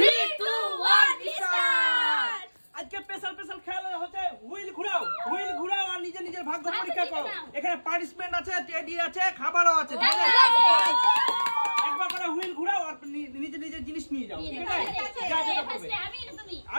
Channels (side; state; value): both; inverted; correlation -1.00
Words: 2 1 start. আজকে special খেলা হচ্ছে হুইল ঘুরাও আর নিজের ভাগ্য পরীক্ষা করো। এখানে পার্টিসিপেন্ট আছে, টেডি আছে, খাবারও আছে। একবার করে হুইল ঘুরাও আর নিজের জিনিস নিয়ে যাও। ঠিক আছে?